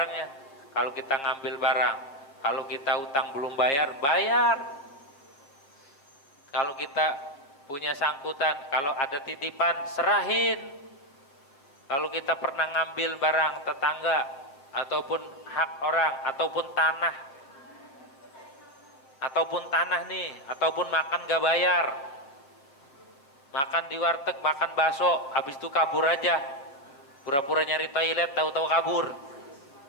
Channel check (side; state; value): right; late; 7.3 ms